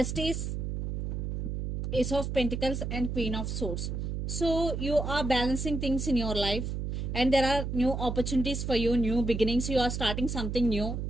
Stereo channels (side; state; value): right; noise; hum, 3 dB below the sound